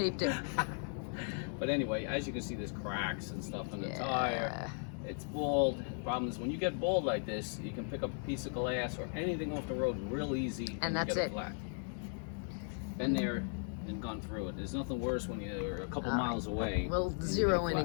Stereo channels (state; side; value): silent; right; 53 dB below the other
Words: it. But anyway, as you can see, there's cracks and stuff in the tire. It's bald. Problem is, when you get bald like this, you can pick up a piece of glass or anything off the road real easy. And that's get it. Flat. Been there and gone through it. There's nothing worse when you're a couple miles away. We'll zero in